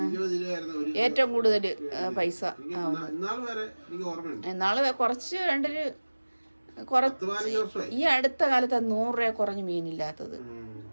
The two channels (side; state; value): both; inverted; correlation -1.00